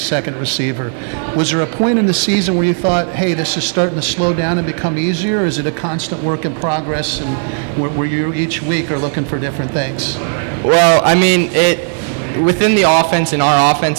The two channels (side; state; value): left; silent; 59 dB below the other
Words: receiver. Was there a point in the season where you thought, hey, this is starting to slow down and become easier, or is it a constant work in progress and where you each week are looking for different things? Well, I mean, within the offense, in our